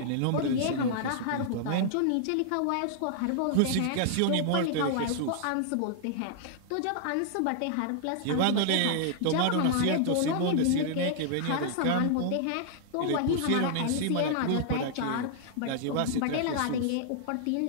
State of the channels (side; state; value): both; different; correlation -0.01